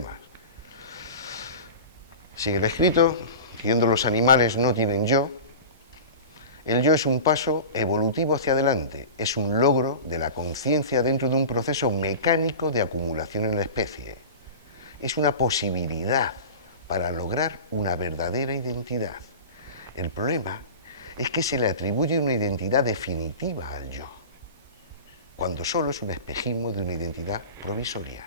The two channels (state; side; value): inverted; both; correlation -0.32